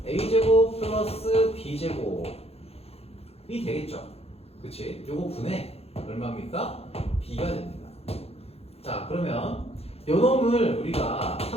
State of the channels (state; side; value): late; right; 0.29 ms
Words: a제곱 플러스 b제곱이 되겠죠? 그치? 요거 분의 얼마입니까? b가 됩니다. 자, 그러면 요 놈을 우리가